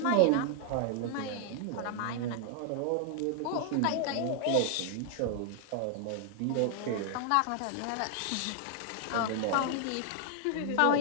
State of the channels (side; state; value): both; different; correlation 0.00